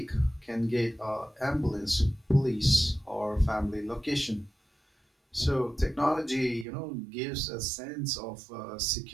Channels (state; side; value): drops out; left; at 6.7 s